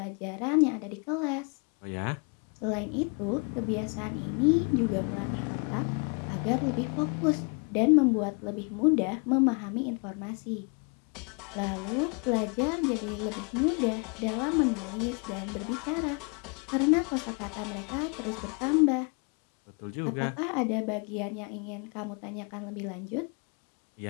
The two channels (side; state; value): right; quieter; 35.7 dB